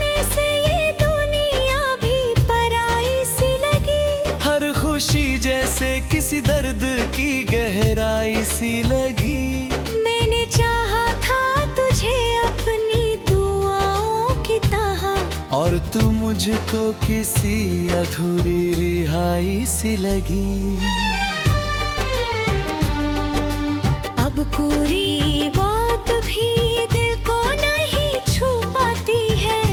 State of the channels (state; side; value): identical; both; correlation 1.00